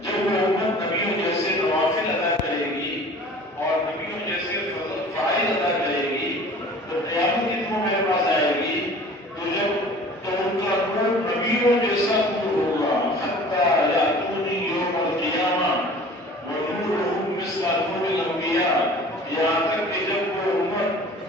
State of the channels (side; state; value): both; normal; correlation 0.45